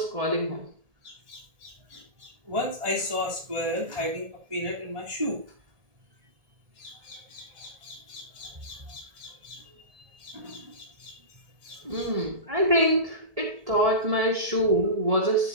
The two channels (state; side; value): late; left; 1.8 ms